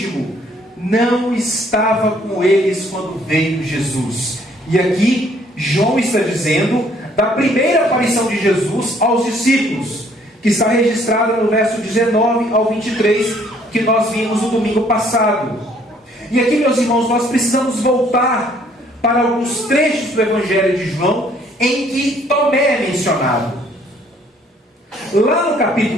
não estava com eles quando veio Jesus. E aqui João está dizendo da primeira aparição de Jesus aos discípulos, que está registrada no verso 19 ao 23, que nós vimos no domingo passado. E aqui, meus irmãos, nós precisamos voltar para alguns trechos do Evangelho de João em que Tomé é mencionado. Lá no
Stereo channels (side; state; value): both; normal; correlation 0.62